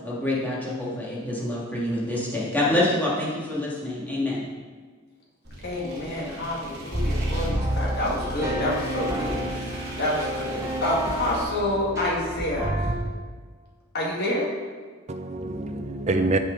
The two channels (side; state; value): both; normal; correlation 0.40